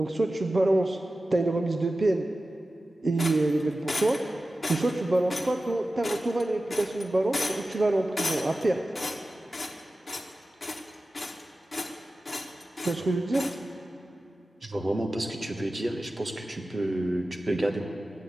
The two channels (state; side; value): normal; both; correlation 0.95